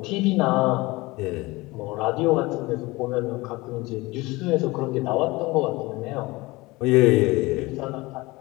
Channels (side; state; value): right; quieter; 21.9 dB